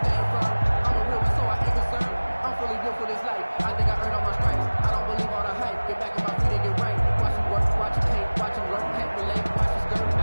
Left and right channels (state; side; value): inverted; both; correlation -1.00